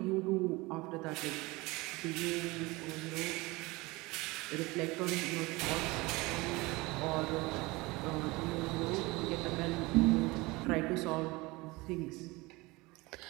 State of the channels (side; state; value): left; quieter; 22.7 dB